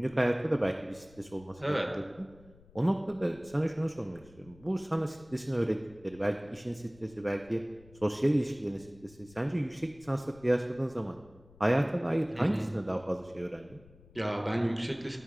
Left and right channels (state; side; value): noise; left; rumble, 24 dB below the sound